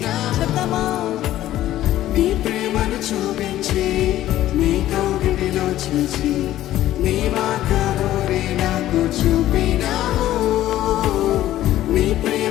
నీ ప్రేమను చూపించి నీ కౌగిలిలో చేసి నీ మార్గమునే నాకు చూపినావు నీ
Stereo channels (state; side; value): quieter; right; 13.8 dB